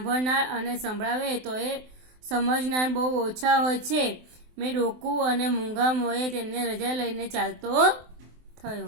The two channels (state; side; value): late; left; 23 ms